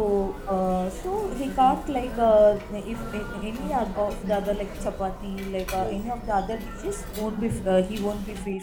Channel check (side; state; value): both; identical; correlation 1.00